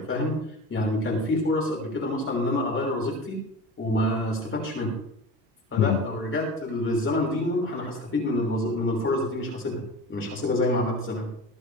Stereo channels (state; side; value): normal; both; correlation 0.33